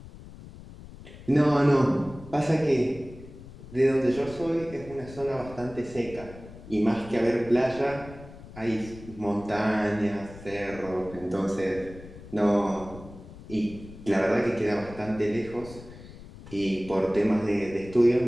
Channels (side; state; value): left; noise; rumble, 16 dB below the sound